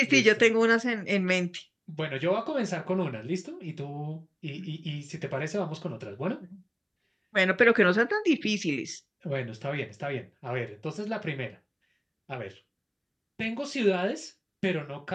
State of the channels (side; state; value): both; identical; correlation 1.00